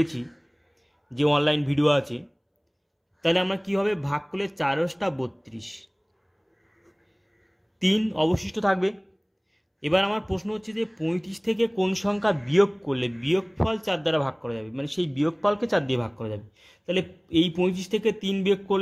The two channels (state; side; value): identical; both; correlation 1.00